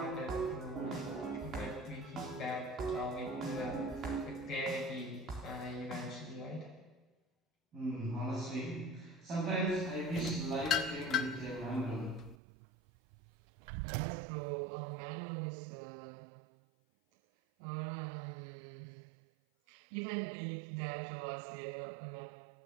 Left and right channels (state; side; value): drops out; left; at 12.4 s